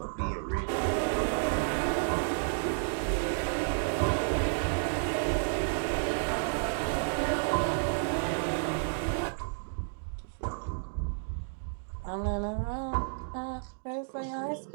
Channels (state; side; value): silent; left; digital silence